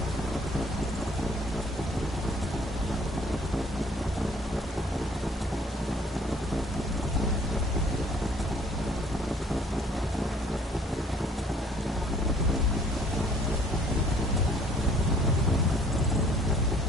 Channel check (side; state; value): both; normal; correlation 0.58